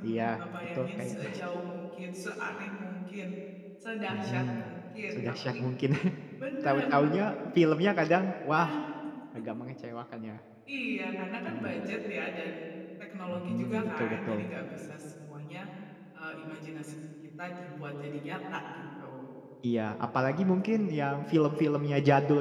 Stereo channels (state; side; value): identical; both; correlation 1.00